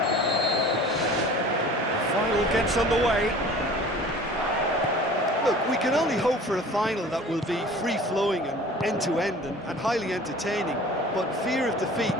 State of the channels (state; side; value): normal; both; correlation 0.45